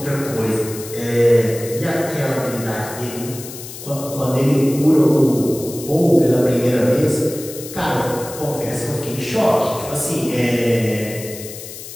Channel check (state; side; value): noise; left; hiss, 12 dB below the sound